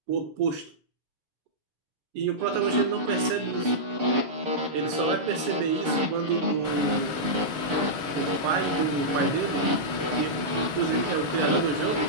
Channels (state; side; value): late; left; 6.8 ms